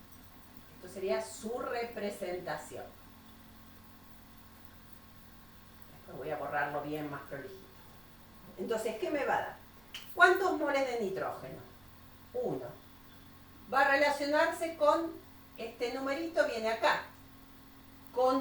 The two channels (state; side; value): noise; right; hum, 27 dB below the sound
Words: Esto sería su representación. Después voy a borrarlo bien más prolijito. Entonces, ¿qué me va a dar? ¿Cuántos moles de nitrógeno? 1. Va a relacionarse con este numerito, viene acá,